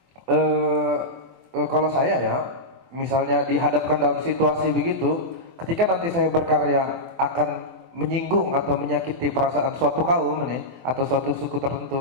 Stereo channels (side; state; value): left; late; 23 ms